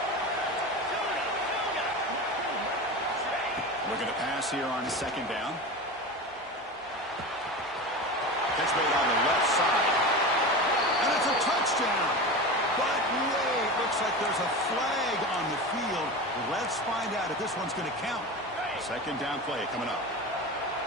Looking to pass here on second down. Catch made on the left side. And it's a touchdown. But wait, looks like there's a flag on the field. Let's find out if this one's going to count. Second down play coming up.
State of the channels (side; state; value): both; normal; correlation 0.27